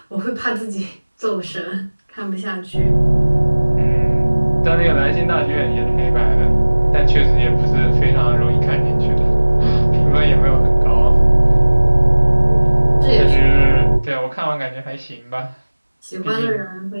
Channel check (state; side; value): inverted; both; correlation -1.00